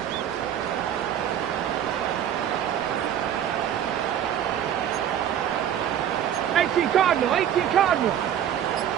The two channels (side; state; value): left; quieter; 10.0 dB